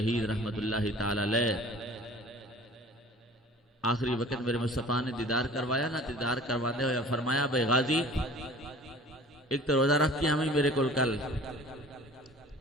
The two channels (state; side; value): normal; both; correlation 0.46